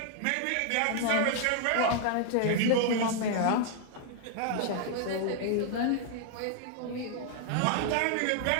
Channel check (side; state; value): both; different; correlation 0.00